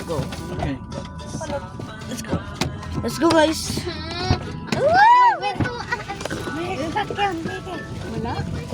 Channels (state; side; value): identical; both; correlation 1.00